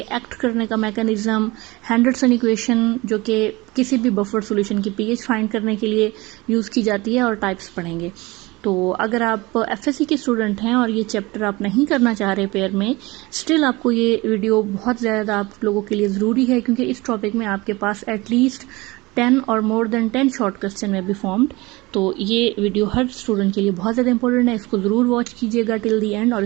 एक्ट करने का मैकेनिज्म, हेंडरसन इक्वेशन जो कि किसी भी बफर सॉल्यूशन की पीएच फाइंड करने के लिए यूज़ की जाती है, और टाइप्स पढ़ेंगे। तो अगर आप एफएससी के स्टूडेंट हैं और ये चैप्टर आप नहीं करना चाह रहे पेयर में, स्टिल आपको ये वीडियो बहुत ज़्यादा आप लोगों के लिए ज़रूरी है, क्योंकि इस टॉपिक में आपके पास एटलीस्ट 10 और मोर देन 10 शॉर्ट क्वेश्चन में बी फॉर्म्ड। तो ये वीडियो हर स्टूडेंट के लिए बहुत ज़्यादा इंपॉर्टेंट है। इसको ज़रूर वॉच कीजिएगा टिल दी एंड, और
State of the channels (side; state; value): left; quieter; 22.3 dB